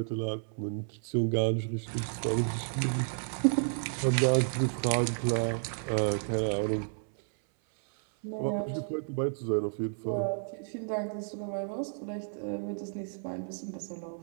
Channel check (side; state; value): left; silent; 55 dB below the other